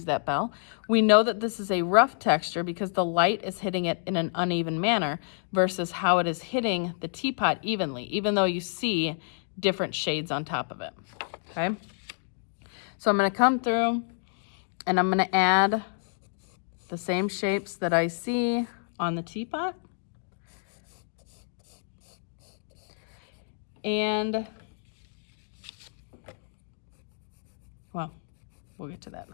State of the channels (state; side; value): silent; right; digital silence